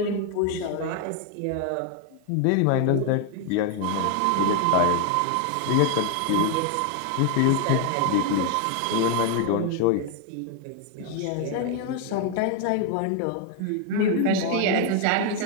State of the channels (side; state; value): both; different; correlation 0.01